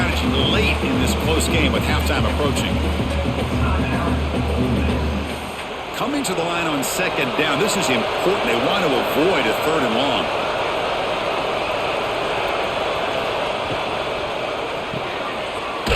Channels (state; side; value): identical; both; correlation 1.00